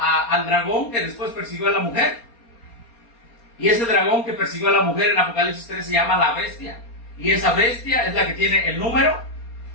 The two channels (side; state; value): right; late; 4.3 ms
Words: dragón que después persiguió a la mujer. Y ese dragón que persiguió a la mujer en Apocalipsis 13 se llama la bestia. Y esa bestia es la que tiene el número.